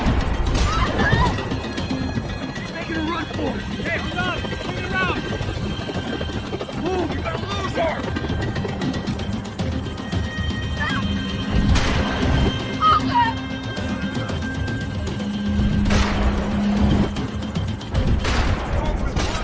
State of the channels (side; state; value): both; identical; correlation 1.00